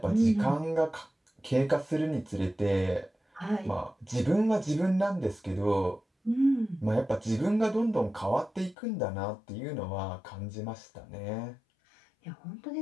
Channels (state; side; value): drops out; right; at 8.8 s